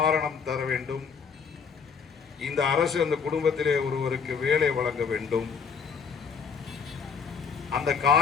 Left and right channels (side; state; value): right; quieter; 6.1 dB